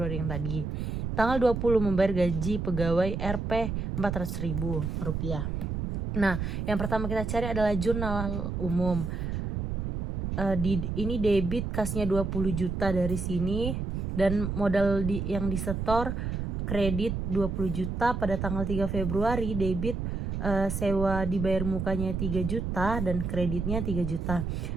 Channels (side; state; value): right; noise; rumble, 2 dB below the sound